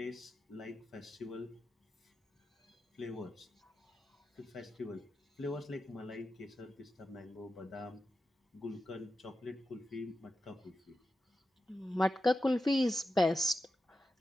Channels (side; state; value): both; normal; correlation 0.90